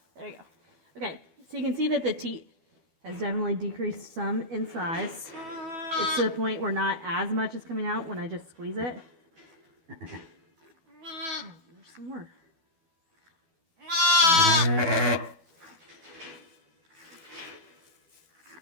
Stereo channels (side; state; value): left; late; 12 ms